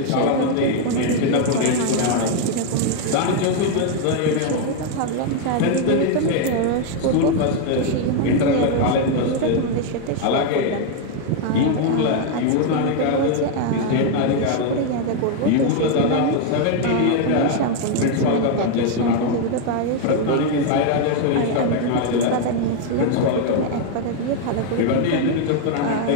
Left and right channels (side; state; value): both; different; correlation 0.00